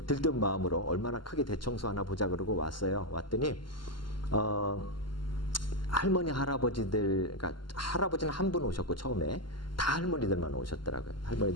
들뜬 마음으로 얼마나 크게 대청소 하나 보자 그러고 왔어요. 왔더니 할머니 할아버지들, 그러니까 할아버지는 한 분 오셨고 처음에 다 할머니들만 오셨더라고요.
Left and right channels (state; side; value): late; right; 0.72 ms